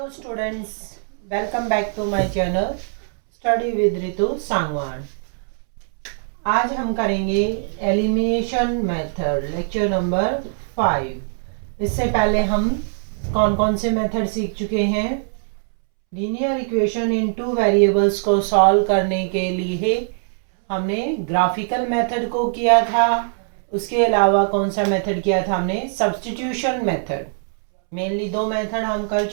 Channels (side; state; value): left; silent; 65 dB below the other